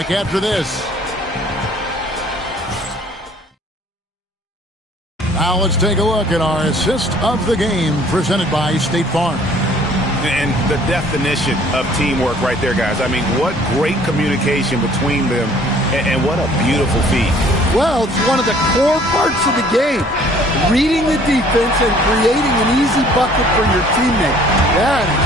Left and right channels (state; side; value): normal; both; correlation 0.56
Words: after this. Now let's take a look at our assist of the game presented by State Farm. And the definition of teamwork right there, guys. I mean, what great communication between them, and what a beautiful feat. Well, it's one of the core parts of the game. Reading the defense and creating an easy bucket for your teammate. That is